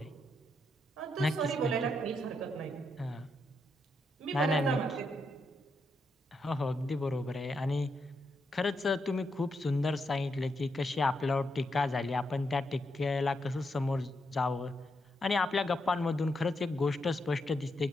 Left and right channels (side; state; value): both; normal; correlation 0.81